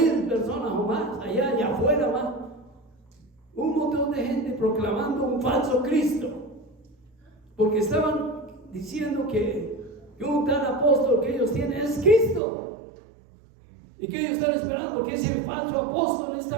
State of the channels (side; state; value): left; drops out; at 12.4 s